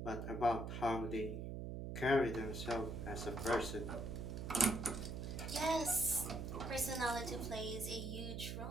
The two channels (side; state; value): right; noise; hum, 5 dB below the sound